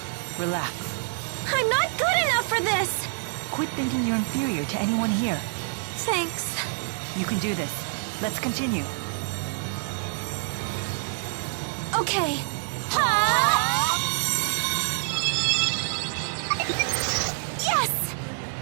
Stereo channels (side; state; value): left; silent; 60 dB below the other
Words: relax. I'm not good enough for this! Quit thinking you're inferior to anyone here. Thanks. You can do this. Let's continue. Okay. Ha! Yes!